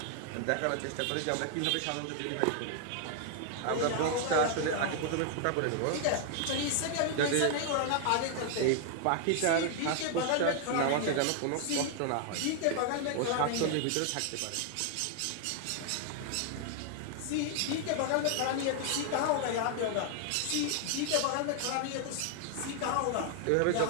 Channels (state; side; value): different; both; correlation 0.00